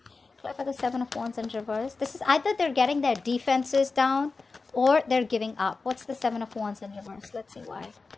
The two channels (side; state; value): right; quieter; 4.1 dB